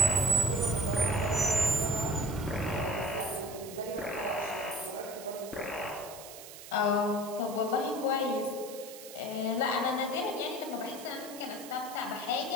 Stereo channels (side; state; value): right; noise; hiss, 14 dB below the sound